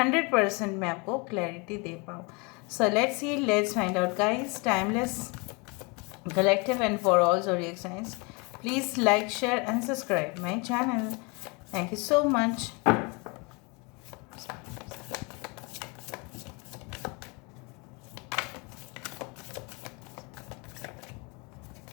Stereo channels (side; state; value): right; quieter; 29.9 dB